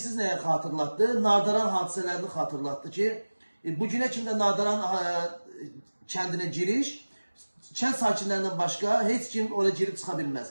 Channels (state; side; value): inverted; both; correlation -1.00